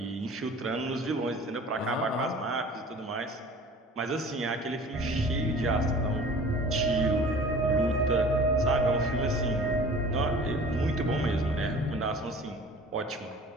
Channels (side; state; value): both; normal; correlation 0.44